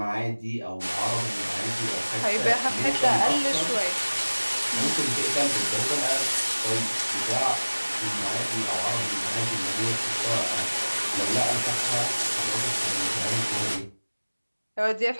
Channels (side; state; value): both; inverted; correlation -1.00